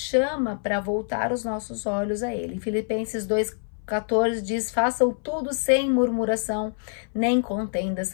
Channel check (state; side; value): silent; right; 59 dB below the other